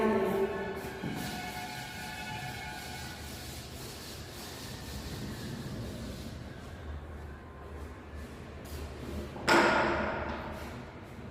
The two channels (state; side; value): identical; both; correlation 1.00